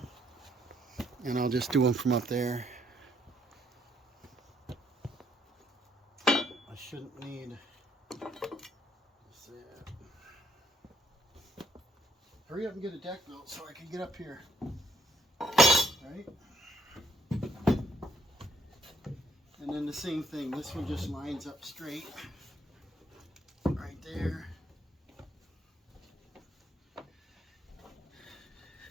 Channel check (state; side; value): normal; both; correlation 0.70